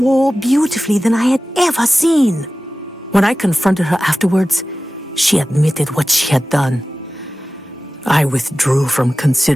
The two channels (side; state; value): both; normal; correlation 0.95